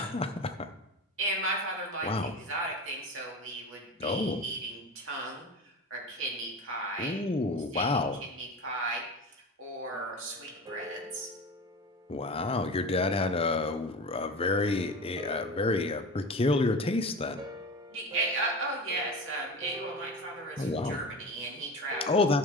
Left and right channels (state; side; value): normal; both; correlation 0.30